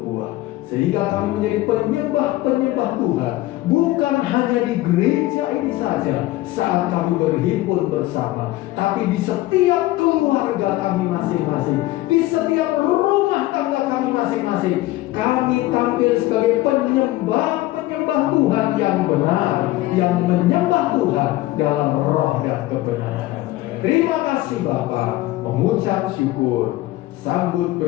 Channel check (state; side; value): quieter; right; 17.3 dB